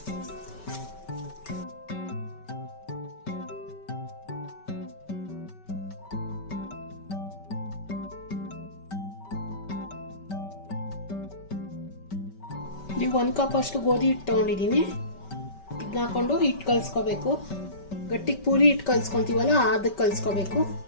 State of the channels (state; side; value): late; right; 5.2 ms